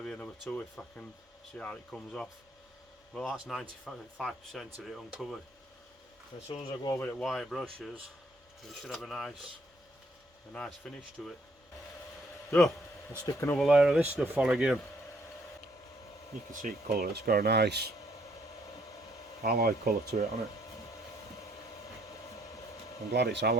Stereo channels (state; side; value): normal; both; correlation 0.67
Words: another two if I can see how it comes off. Well, that's 95% of it uncovered. As soon as I go over it with wire brushes, it should have a nice finish to it. So I'll stick another layer of this stuff on again. You can see it colour. It's got a nice alloy colour to it, hasn't it? I'm glad it's